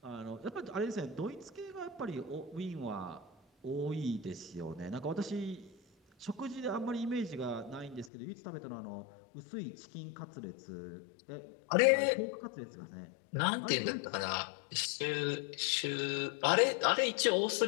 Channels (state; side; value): drops out; right; at 8.1 s